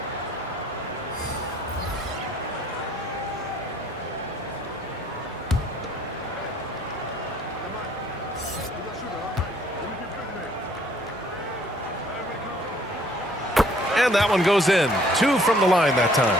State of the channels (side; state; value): both; normal; correlation 0.60